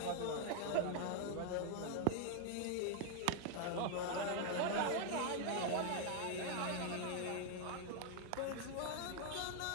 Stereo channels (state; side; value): different; both; correlation 0.00